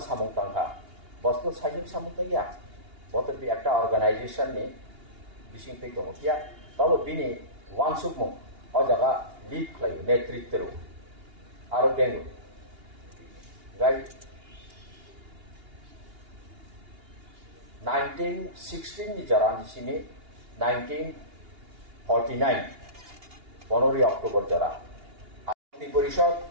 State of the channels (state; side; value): late; left; 2.8 ms